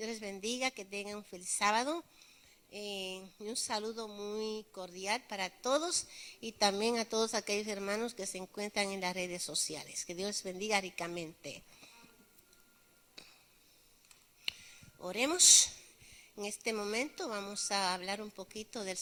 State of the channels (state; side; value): identical; both; correlation 1.00